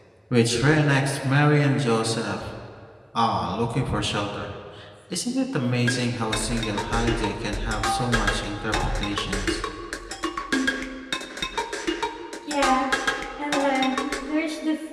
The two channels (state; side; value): identical; both; correlation 1.00